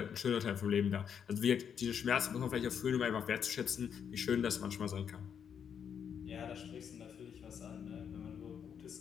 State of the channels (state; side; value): quieter; right; 7.7 dB